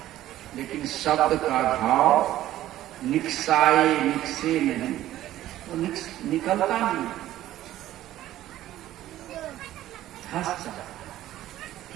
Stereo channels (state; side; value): quieter; left; 13.9 dB